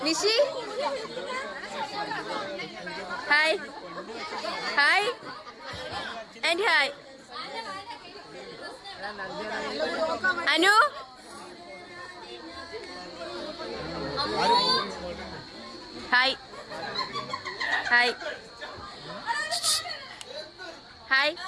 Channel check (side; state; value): both; identical; correlation 1.00